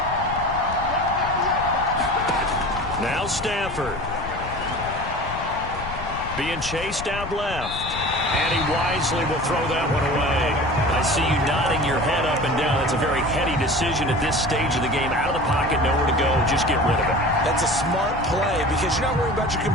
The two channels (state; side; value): noise; left; rumble, 10 dB below the sound